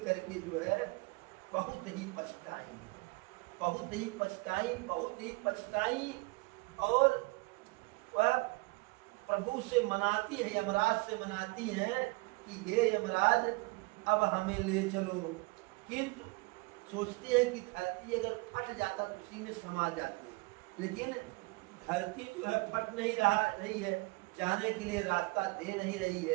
करके जो है बहुत ही पछताई, बहुत ही पछताई, बहुत ही पछताई, और वह प्रभु से मनाती है, यमराज से मनाती है कि हे यमराज अब हमें ले चलो। किंतु सोचते हैं कि धरती अगर फट जाता तो उसी में समा जाते, लेकिन धरती जो है फट नहीं रही है, जाने के लिए रास्ता दे नहीं रही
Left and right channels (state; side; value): quieter; left; 26.2 dB